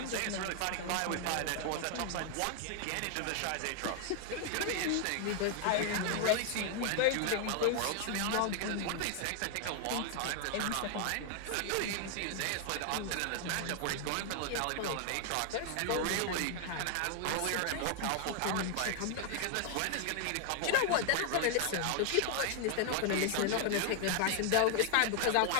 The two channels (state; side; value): different; both; correlation 0.00